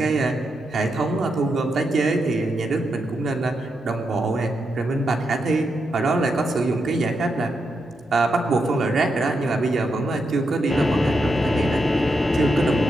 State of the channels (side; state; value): both; normal; correlation 0.84